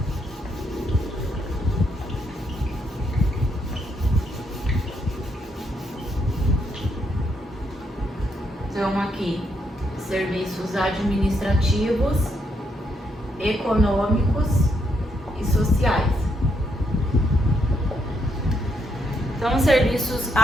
Então aqui, serviços administrativos, econômicos e sociais. Então, serviços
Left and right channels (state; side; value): normal; both; correlation 0.77